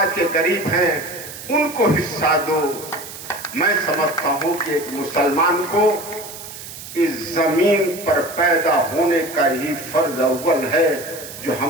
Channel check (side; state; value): right; noise; hiss, 13 dB below the sound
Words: के गरीब हैं, उनको हिस्सा दो। मैं समझता हूं कि एक मुसलमान को इस जमीन पर पैदा होने का ही फर्ज अव्वल है जो